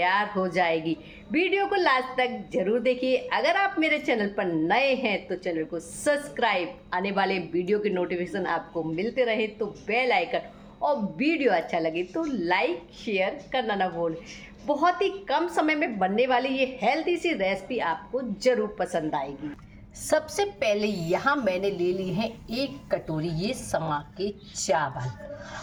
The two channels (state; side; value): identical; both; correlation 1.00